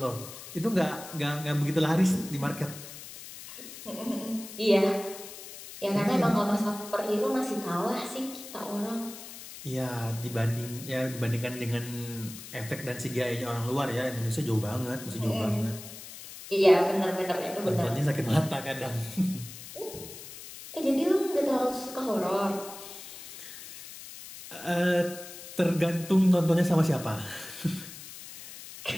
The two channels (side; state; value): left; noise; hiss, 13 dB below the sound